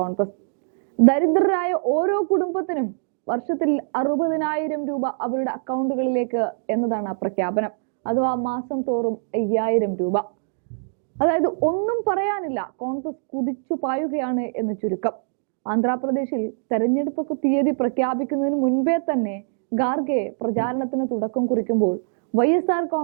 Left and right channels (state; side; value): silent; left; digital silence